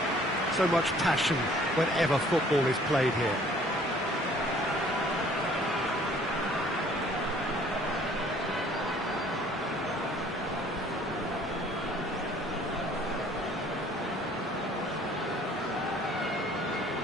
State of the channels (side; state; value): both; normal; correlation 0.56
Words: so much passion whenever football is played here.